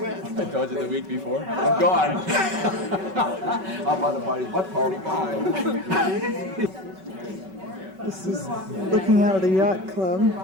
I told you the week before. I'm gone. How about the party? What party? This is looking out of the yacht club,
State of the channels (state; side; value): late; left; 5.3 ms